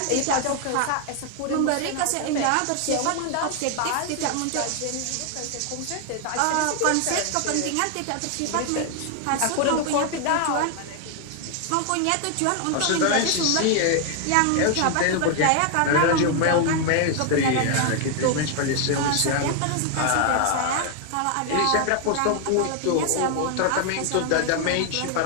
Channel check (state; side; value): different; both; correlation 0.00